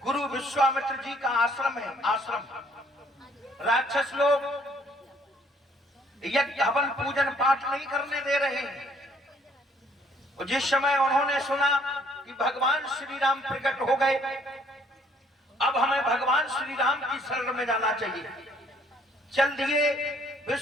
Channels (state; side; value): normal; both; correlation 0.63